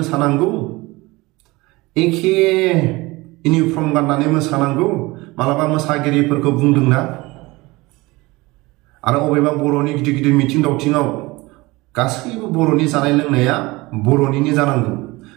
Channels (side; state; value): left; quieter; 21.9 dB